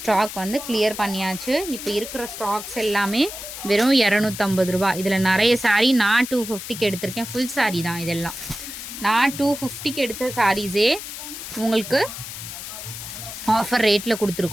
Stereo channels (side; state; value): left; noise; hiss, 9 dB below the sound